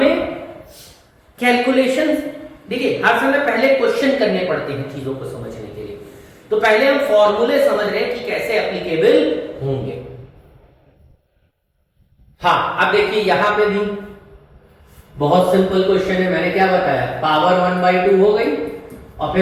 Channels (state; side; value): identical; both; correlation 1.00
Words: कैलकुलेशन, देखिए हर समय पहले क्वेश्चन करने पड़ते हैं चीजों को समझने के लिए, तो पहले हम फॉर्मूले समझ रहे हैं कि कैसे एप्लीकेबल होंगे। हाँ, अब देखिए यहां पे भी बहुत सिंपल क्वेश्चन है, मैंने क्या बताया, पावर 1/2 हो गई, और